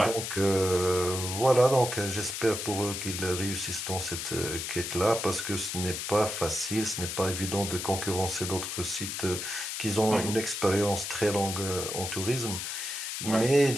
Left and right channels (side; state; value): left; noise; hiss, 4 dB below the sound